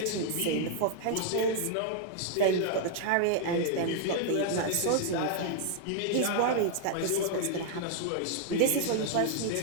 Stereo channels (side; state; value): both; different; correlation 0.00